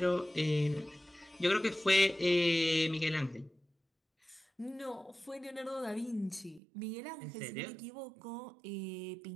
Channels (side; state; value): left; drops out; at 6.6 s